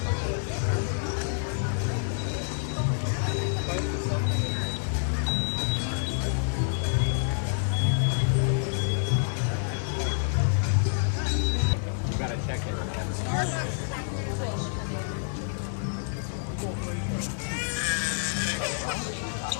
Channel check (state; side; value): silent; right; digital silence